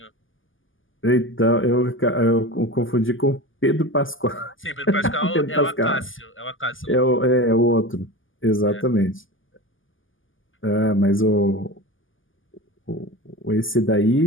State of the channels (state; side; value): late; right; 0.58 ms